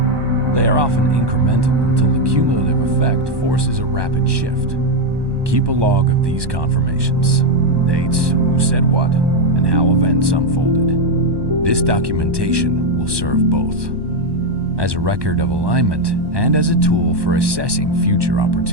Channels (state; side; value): late; left; 1.2 ms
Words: They are often incremental until the cumulative effect forces a rapid shift. Keep a log of these confirmations: dates, who said what, and how events unfolded. This documentation will serve both as a record of alignment and as a tool for assessing future